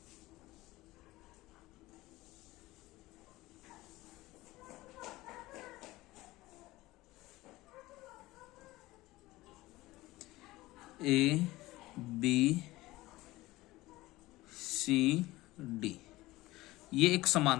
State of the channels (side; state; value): right; quieter; 18.7 dB